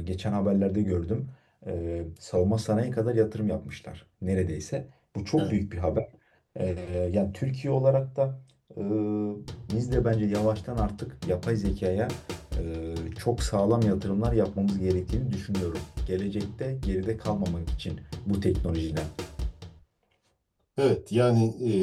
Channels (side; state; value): both; identical; correlation 1.00